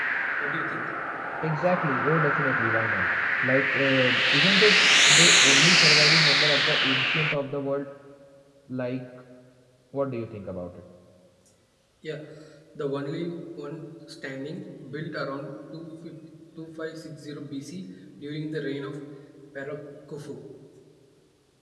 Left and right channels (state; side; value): identical; both; correlation 1.00